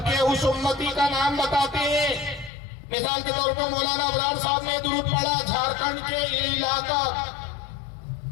اس امتی کا نام بتاتے ہیں. مثال کے طور پر مولانا ابرار صاحب نے درود پڑھا جھارکھنڈ کے یہ علاقہ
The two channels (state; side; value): drops out; right; at 2.5 s